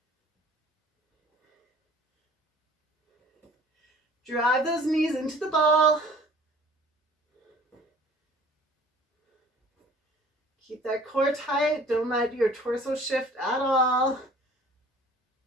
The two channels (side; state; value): both; normal; correlation 0.50